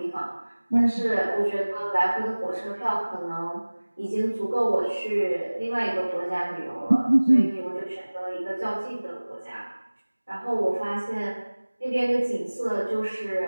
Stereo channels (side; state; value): both; inverted; correlation -1.00